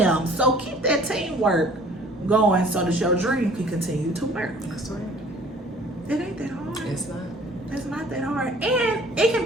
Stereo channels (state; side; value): normal; both; correlation 0.52